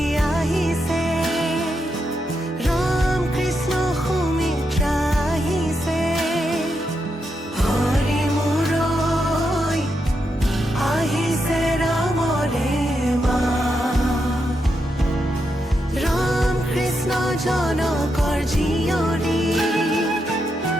আহিছে, ৰাম কৃষ্ণ সুমিত্ৰা আহিছে। হৰি মূৰৈ আহিছে ৰামৰে মা। ৰাম কৃষ্ণ জনকৰ জীয়ৰী,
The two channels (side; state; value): both; normal; correlation 0.83